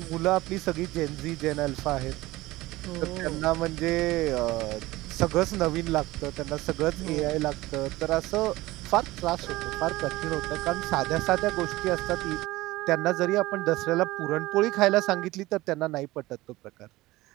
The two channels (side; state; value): left; quieter; 18.8 dB